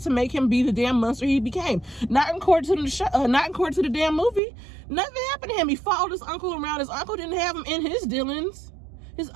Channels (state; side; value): drops out; left; at 4.4 s